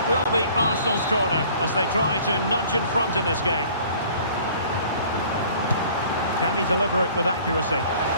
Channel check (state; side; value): inverted; both; correlation -0.52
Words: will be Arsenal's corner as they try to nudge in front in this game. Can he deliver it with accuracy?